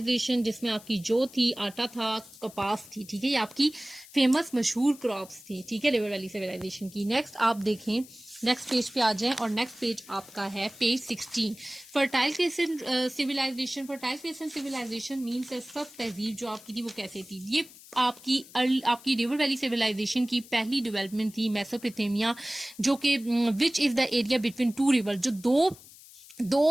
जिसमें आपकी जो थी आटा था, कपास थी, ठीक है, ये आपकी फेमस मशहूर क्रॉप्स थी, ठीक है, रिवर वैली सिविलाइजेशन की। नेक्स्ट आप देखें, नेक्स्ट पेज पे आ जाएं और नेक्स्ट पेज आपका है page 16, fertile crescent civilization. Fertile crescent civilization means सब तहजीब जो आपकी थी वो कैसे थी, ये आपकी रिवर वैली सिविलाइजेशन की पहली डेवलपमेंट थी मेसोपोटामिया, जो कि which is the area between two river, जो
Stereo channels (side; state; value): left; noise; hiss, 20 dB below the sound